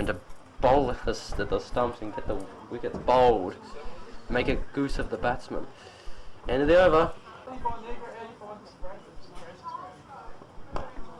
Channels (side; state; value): both; identical; correlation 1.00